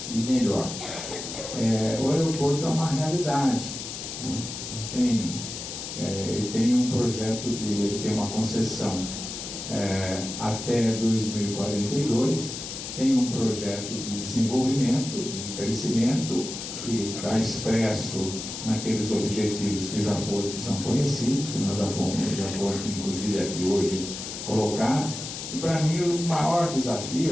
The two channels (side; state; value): left; noise; hiss, 8 dB below the sound